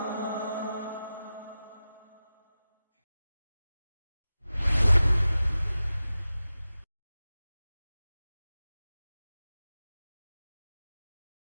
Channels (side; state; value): both; inverted; correlation -0.95